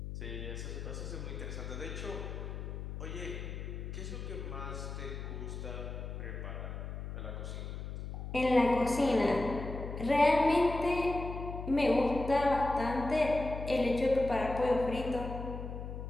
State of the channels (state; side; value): noise; left; hum, 7 dB below the sound